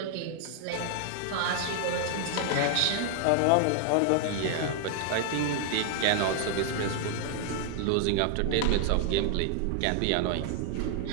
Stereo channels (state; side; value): different; both; correlation 0.00